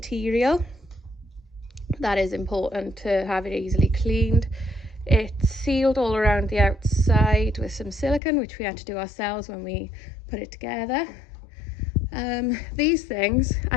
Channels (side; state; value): right; drops out; at 8.2 s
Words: That is important to have it easily cleaned. It's sealed all around the outside with some silicone, which we had to do ourselves when we put it together. These things,